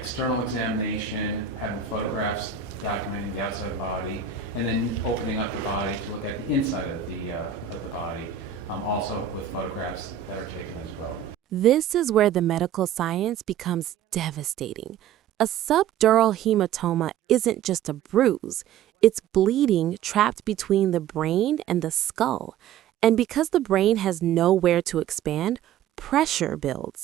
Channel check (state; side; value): quieter; left; 9.0 dB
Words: examination, having photographs documenting the outside of the body, and then opening up the body to look at the inside of the body, also with photographs that are taken as well. This is where the medical science becomes devastating. A subdural hematoma isn't just a bruise. It's bleeding trapped between the brain and the skull. And because the brain has nowhere to expand, pressure